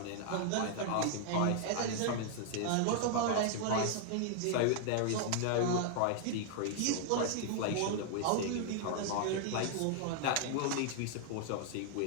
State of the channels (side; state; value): both; different; correlation -0.01